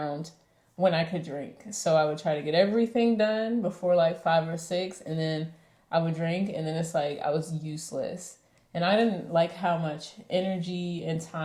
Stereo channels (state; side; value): identical; both; correlation 1.00